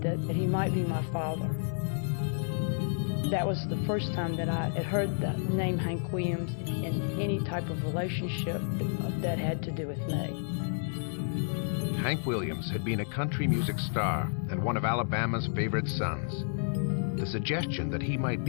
that he might be my father. That was the first time that I had heard the name Hank Williams in any type of relationship that had to do with me. Hank Williams had been a country music star and one of Alabama's favorite sons. The suggestion that he might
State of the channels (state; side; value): silent; right; 57 dB below the other